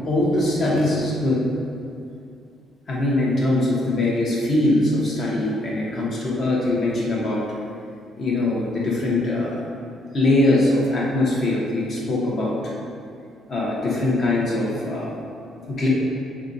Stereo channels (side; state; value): both; normal; correlation 0.70